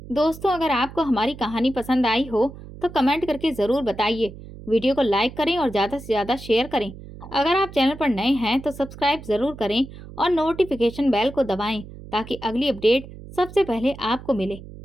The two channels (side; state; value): right; noise; hum, 15 dB below the sound